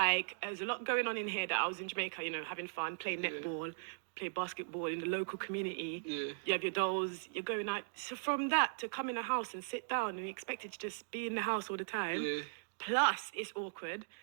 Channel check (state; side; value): silent; left; digital silence